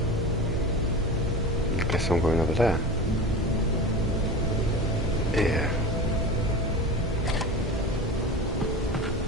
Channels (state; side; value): normal; both; correlation 0.31